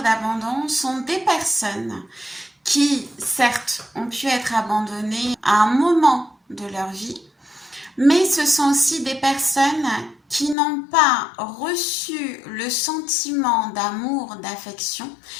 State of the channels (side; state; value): right; drops out; at 10.6 s